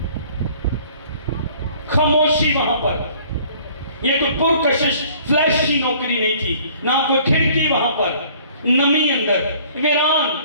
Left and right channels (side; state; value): both; inverted; correlation -0.54